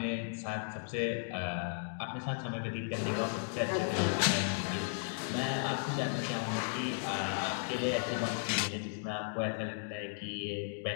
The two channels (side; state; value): right; silent; digital silence